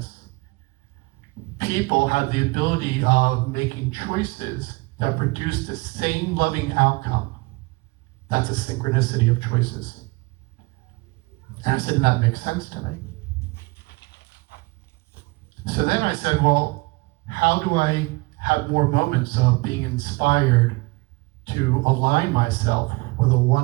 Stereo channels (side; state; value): left; quieter; 24.8 dB